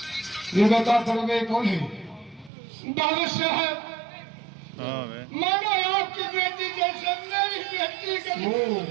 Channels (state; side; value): drops out; left; at 2.5 s